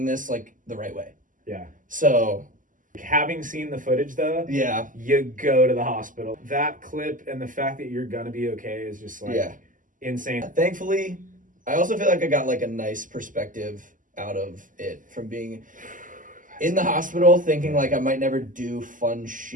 this like the right way. Yeah. So having seen the footage though, yeah, you go to the hospital. That clip and the fact that you're gonna be okay is just like insane. Thankfully, I also feel like I got like a nice perspective out of it from being in the hospital, thinking like I might never do fun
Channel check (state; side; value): late; left; 0.38 ms